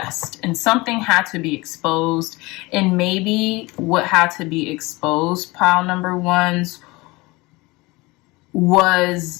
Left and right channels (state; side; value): quieter; right; 23.0 dB